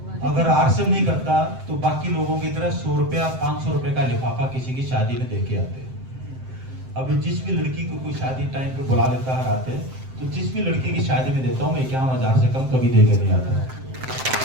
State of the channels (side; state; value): left; late; 7.7 ms